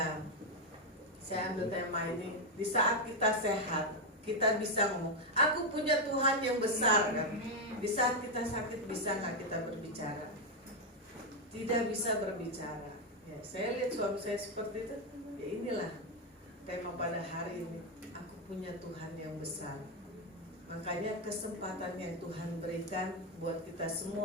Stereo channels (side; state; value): both; normal; correlation 0.04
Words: saya ambil tema ini. Di saat kita sehat, kita bisa ngomong, aku punya Tuhan yang besar kan. Di saat kita sakit bisa nggak kita berbicara? Tidak bisa berbicara. Ya, saya lihat suami saya seperti itu. Ya inilah tema pada hari ini. Aku punya Tuhan yang besar. Makanya kesempatan yang Tuhan berikan buat kita